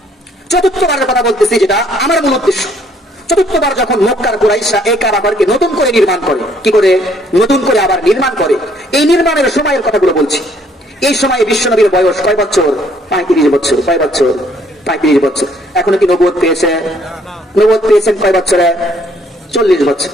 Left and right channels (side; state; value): both; normal; correlation 0.64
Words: চতুর্থবারের কথা বলতেছি, যেটা আমার মূল উদ্দেশ্য। চতুর্থবার যখন মক্কার কুরাইশরা এই কাবা ঘরকে নতুন করে নির্মাণ করে, কি করে? নতুন করে আবার নির্মাণ করে। এই নির্মাণের সময়ের কথাগুলো বলছি। এই সময় বিশ্বনবীর বয়স কয় বছর? 35 বছর। কয় বছর? 35 বছর। এখনো কি নবুয়ত পেয়েছে? নবুয়ত পেয়েছেন কয় বছরে? 40 বছর।